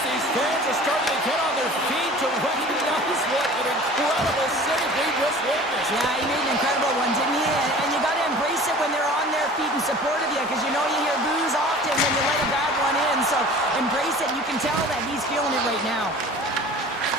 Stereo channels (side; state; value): both; normal; correlation 0.43